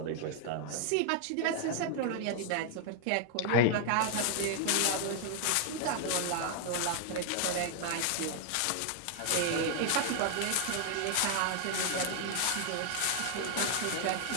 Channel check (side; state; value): both; different; correlation 0.00